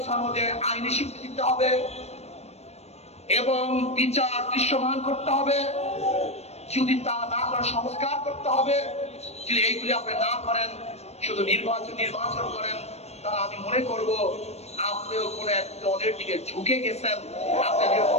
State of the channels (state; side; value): late; right; 0.31 ms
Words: সনদে আইনি স্বীকৃতি দিতে হবে এবং বিচার দৃশ্যমান করতে হবে। যদি তা না করে সংস্কার করতে হবে। যদি এইগুলি আপনি না করেন, শুধু নির্বাচন করেন, তাহলে আমি মনে করব আপনিও কোন এক দলের দিকে ঝুঁকে গেছেন, আপনি